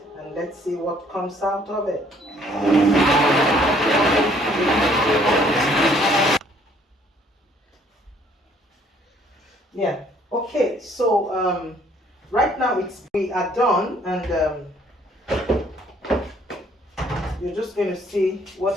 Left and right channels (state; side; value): normal; both; correlation 0.62